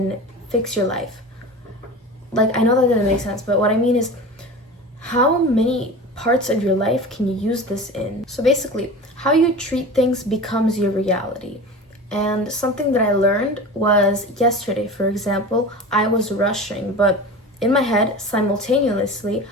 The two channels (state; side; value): normal; both; correlation 0.33